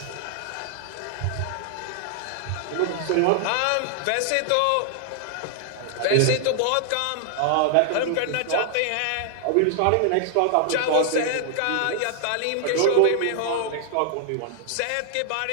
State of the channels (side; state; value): both; different; correlation 0.00